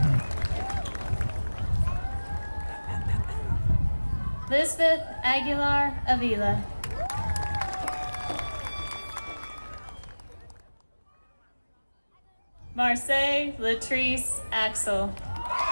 Lisbeth Aguilar Avila. Marseille Latrice Axel.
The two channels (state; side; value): inverted; both; correlation -1.00